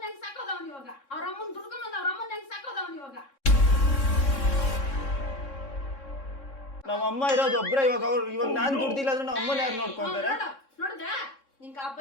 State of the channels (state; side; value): late; right; 3.6 ms